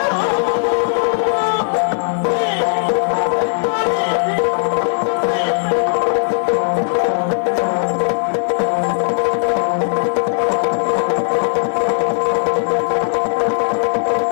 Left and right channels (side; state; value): right; silent; 59 dB below the other